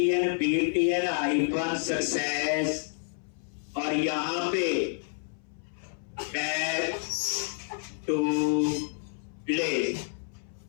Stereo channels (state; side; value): silent; right; 58 dB below the other